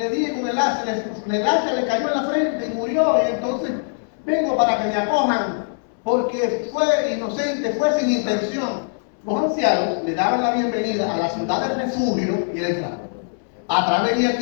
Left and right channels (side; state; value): right; silent; 64 dB below the other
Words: dije con el hacha, el hacha le cayó en la frente y murió, y entonces vengo para que me acojan, porque fue inocente, fue sin intención. Los ancianos le daban la bienvenida a la ciudad del refugio y él entraba. ¿Atrás venía